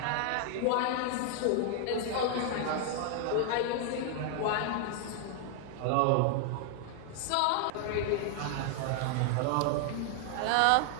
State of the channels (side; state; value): both; different; correlation 0.00